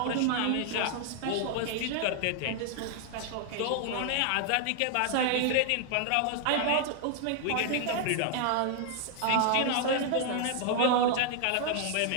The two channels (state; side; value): different; both; correlation 0.00